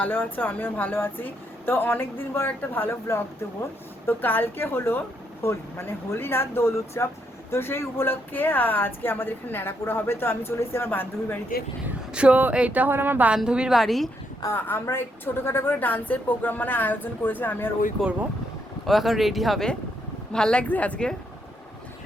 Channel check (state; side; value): normal; both; correlation 0.76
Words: আছো, আমিও ভালো আছি। তো অনেক দিন পর একটা ভালো ব্লগ দেবো। তো কালকে হলো হোলি, মানে হোলি না, দোল উৎসব। তো সেই উপলক্ষে আজকে আমাদের এখানে ন্যাড়াপোড়া হবে। তো আমি চলে এসেছি আমার বান্ধবীর বাড়িতে। সো এইটা হলো আমার বান্ধবীর বাড়ি। আমরা একটু ছোটোখাটো করে ডান্সের প্রোগ্রাম মানে আয়োজন করেছি, আমি আর ওই করবো। ও এখন রেডি হবে। ভাল লাগছে আজকে।